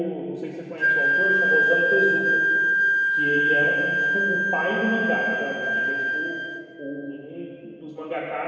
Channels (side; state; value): both; identical; correlation 1.00